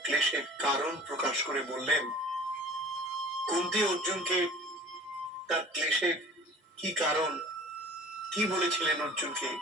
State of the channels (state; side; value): normal; both; correlation 0.44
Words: কারণ প্রকাশ করে বললেন। কুন্তি অর্জুনকে তার ক্লেশের কি কারণ, কি বলেছিলেন অর্জুনকে,